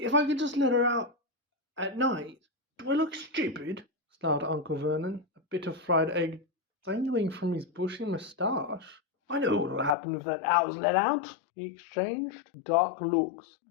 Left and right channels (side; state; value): right; drops out; at 10.0 s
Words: I could just let her out at night." "Do I look stupid?" snarled Uncle Vernon, a bit of fried egg dangling from his bushy moustache. "I know what'll happen if that owl's let out." He exchanged dark looks